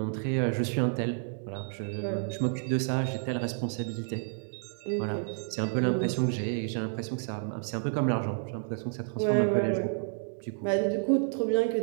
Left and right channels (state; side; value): silent; left; 58 dB below the other